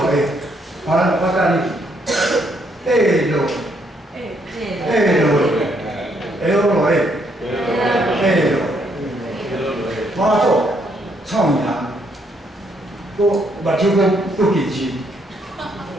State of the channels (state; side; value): normal; both; correlation 0.72